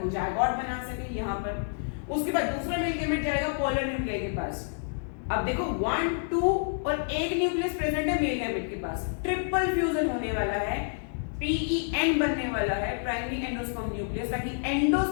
जायगोट बना सके यहां पर, उसके बाद दूसरा मेल गैमेट जाएगा पोलर न्यूक्लियस के पास। अब देखो 1, 2 और एक न्यूक्लियस प्रेजेंट है मेल गैमेट के पास, ट्रिपल फ्यूजन होने वाला है, PEN बनने वाला है, प्राइमरी एंडोस्पर्म न्यूक्लियस, ताकि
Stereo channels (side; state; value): right; silent; digital silence